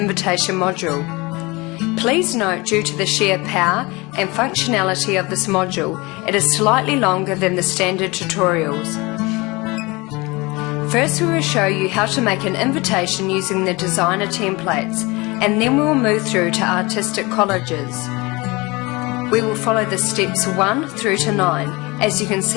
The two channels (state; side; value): quieter; right; 24.3 dB